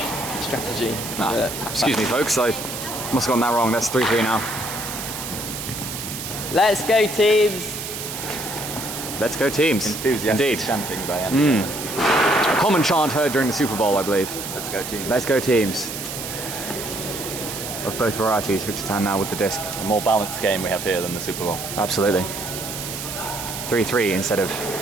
strategy. Excuse me, folks. I must have gotten that wrong. That's 3-3 now. Let's go, teams. Let's go, teams. Enthusiastic Indeed. chanting by Andy. A common chant heard during the Super Bowl, I believe. Let's go team. Let's go, teams. Of both varieties. Victor Tan now with the disc. A more balanced game we have here than the Super Bowl. Absolutely. 3-3 instead of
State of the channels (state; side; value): noise; right; hiss, 7 dB below the sound